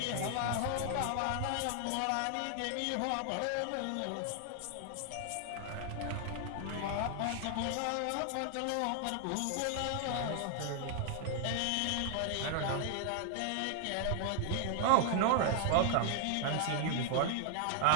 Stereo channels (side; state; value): both; different; correlation 0.00